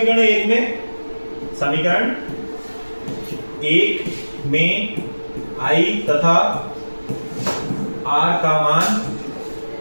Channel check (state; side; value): inverted; both; correlation -1.00